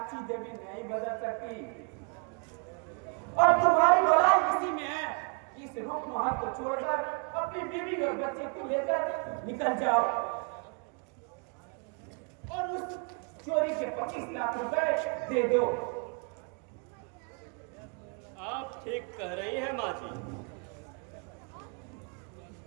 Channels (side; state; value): left; quieter; 37.5 dB